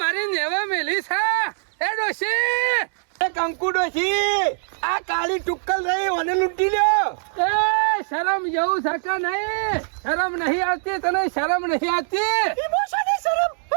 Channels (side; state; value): left; silent; digital silence